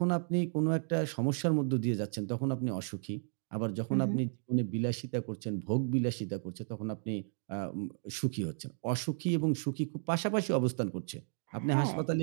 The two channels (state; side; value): silent; left; 55 dB below the other